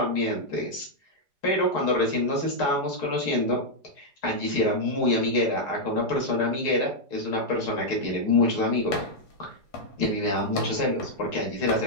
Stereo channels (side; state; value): right; late; 4.8 ms